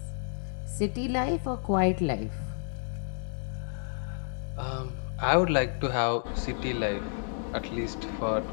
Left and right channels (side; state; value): right; silent; digital silence